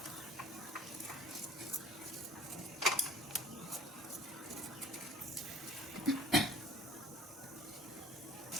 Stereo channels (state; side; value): normal; both; correlation 0.49